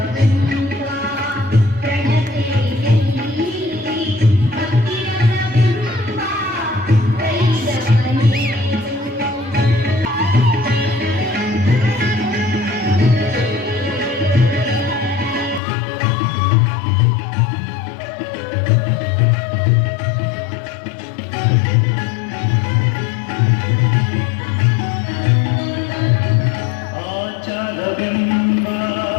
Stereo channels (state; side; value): drops out; right; at 15.6 s